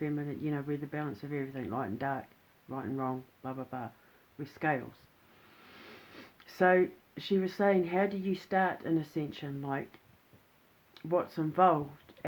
we're the balance of everything, light and dark, right and wrong, blah, blah, blah. We're scales. So she was saying, how do you start an Ascension? Like, what's involved,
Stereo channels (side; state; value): both; identical; correlation 1.00